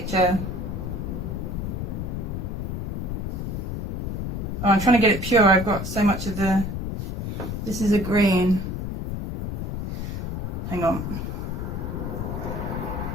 Oh, I'm trying to get it pure. I've got so much of the... This is a green. Hang on.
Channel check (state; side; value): noise; left; rumble, 4 dB below the sound